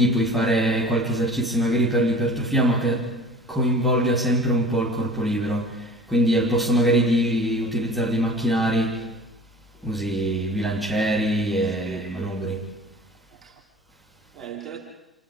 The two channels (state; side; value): normal; both; correlation 0.43